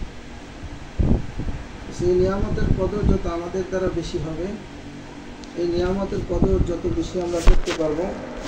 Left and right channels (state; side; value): identical; both; correlation 1.00